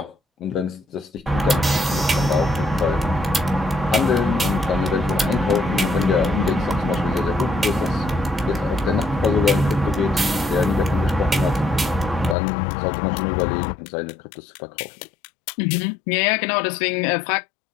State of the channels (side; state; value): right; drops out; at 12.4 s